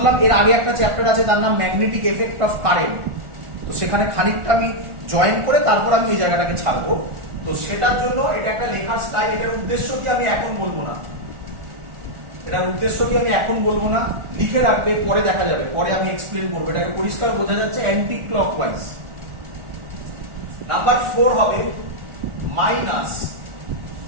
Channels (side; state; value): left; late; 1.4 ms